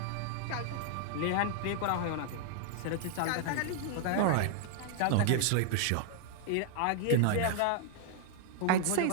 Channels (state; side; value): different; both; correlation 0.00